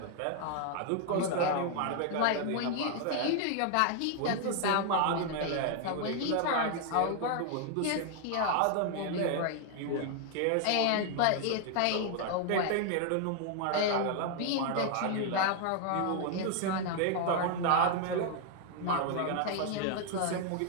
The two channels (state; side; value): different; both; correlation 0.00